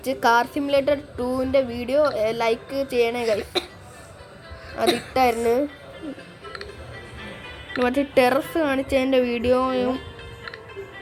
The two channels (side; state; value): both; identical; correlation 1.00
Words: കാർ സിമുലേറ്റർ 2ൻ്റെ വീഡിയോ ലൈക്ക് ചെയ്യണേ ഗൈസ്. അതിട്ടായിരുന്നു. മറ്റേ ടെറസ് കാണിച്ചതിൻ്റെ വീഡിയോയും